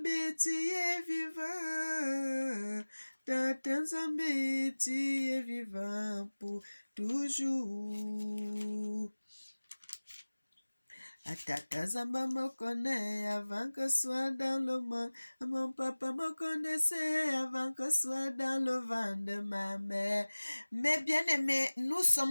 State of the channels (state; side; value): inverted; both; correlation -1.00